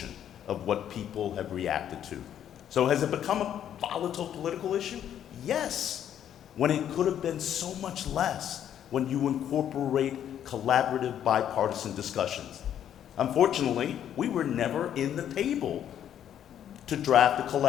of what people have reacted to. So has it become a volatile political issue? Yes, when it could have been so much less when you incorporate collaborative bipartisan discussions. Unfortunately, we were never in the table to draft a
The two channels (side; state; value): right; quieter; 10.0 dB